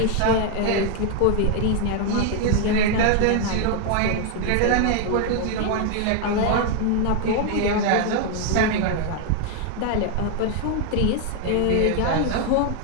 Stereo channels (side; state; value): both; different; correlation 0.00